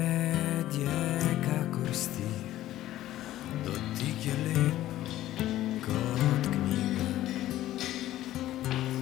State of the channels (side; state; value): right; quieter; 14.2 dB